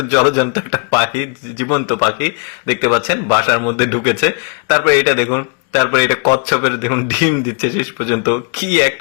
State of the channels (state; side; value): quieter; right; 36.2 dB